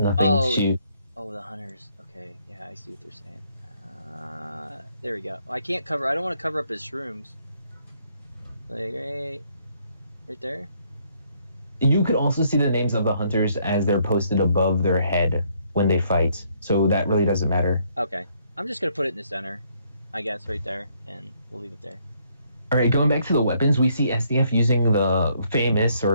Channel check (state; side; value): inverted; both; correlation -0.70